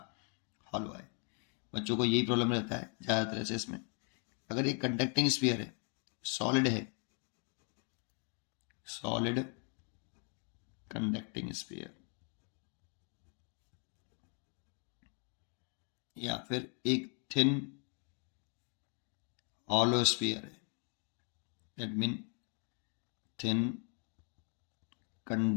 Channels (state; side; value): quieter; right; 38.4 dB